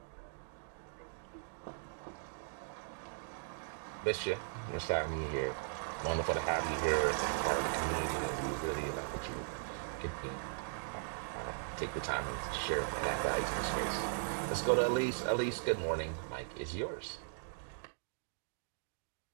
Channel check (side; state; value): left; silent; digital silence